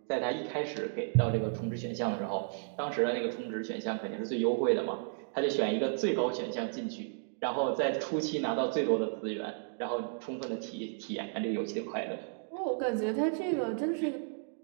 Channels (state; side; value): silent; left; digital silence